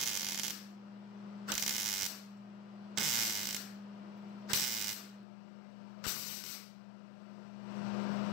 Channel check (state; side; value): drops out; right; at 5.2 s